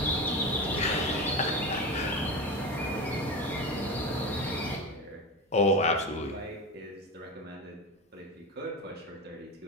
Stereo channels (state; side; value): normal; both; correlation 0.23